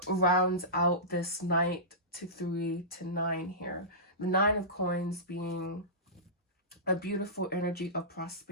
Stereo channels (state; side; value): normal; both; correlation -0.19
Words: rounds out this Knight to 3 to 9 here. The Nine of Coins being a beautiful energy of